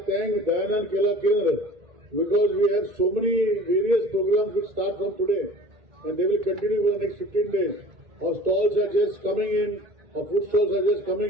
thank Dyanan Kela Kendra because we have so many various programs which start from today and they will continue for the next 15 days. Our stalls are just coming in, our food stalls are just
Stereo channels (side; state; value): left; late; 2.2 ms